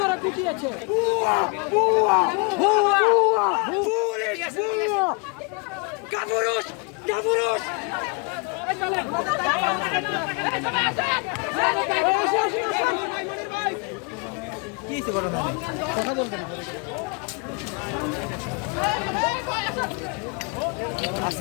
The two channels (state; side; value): quieter; right; 32.2 dB